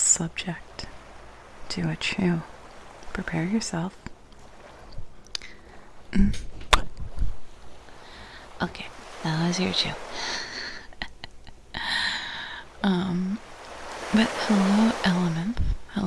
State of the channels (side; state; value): both; identical; correlation 1.00